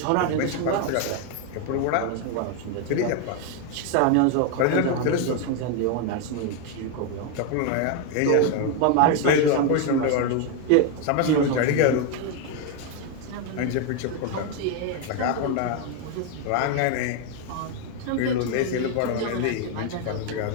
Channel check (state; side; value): different; both; correlation 0.01